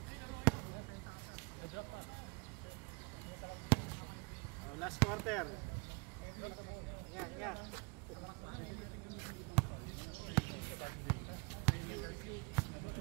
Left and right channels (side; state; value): left; quieter; 30.9 dB